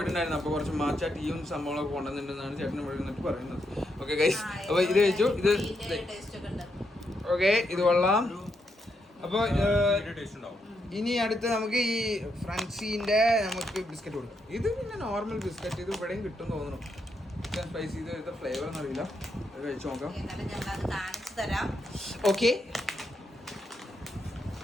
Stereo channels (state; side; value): normal; both; correlation 0.81